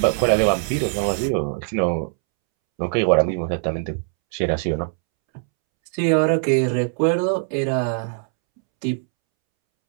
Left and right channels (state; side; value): silent; left; 65 dB below the other